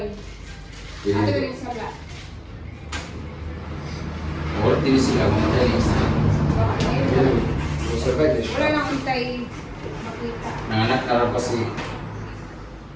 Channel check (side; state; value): both; identical; correlation 1.00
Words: Pwede Ano dito. yung sala? Wala din sila, mga talis. Survive na siya. Wala nang hintay makita. Nanganak na rin kasi.